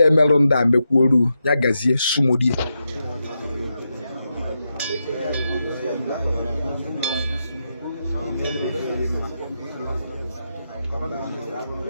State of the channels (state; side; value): inverted; both; correlation -0.86